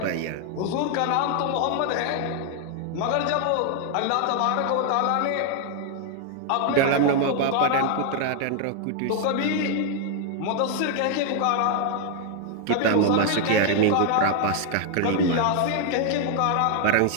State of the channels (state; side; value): different; both; correlation 0.00